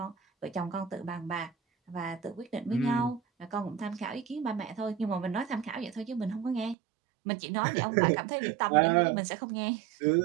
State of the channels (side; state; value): left; drops out; at 6.8 s